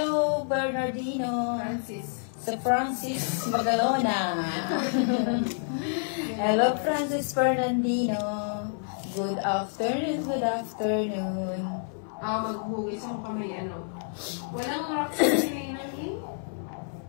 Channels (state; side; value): silent; right; 56 dB below the other